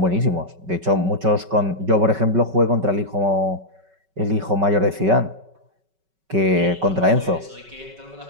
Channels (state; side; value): late; left; 5.3 ms